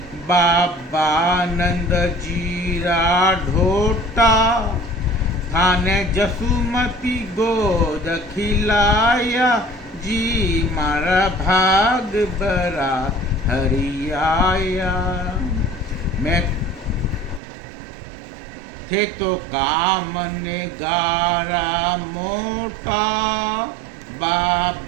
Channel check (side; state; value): left; drops out; at 17.4 s